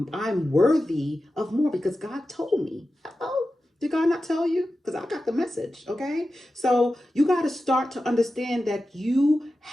I'm worthy of more because God told me. Oh, did God not tell you? Because I got the message, okay? So you got to start to understand that you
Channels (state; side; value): normal; both; correlation 0.93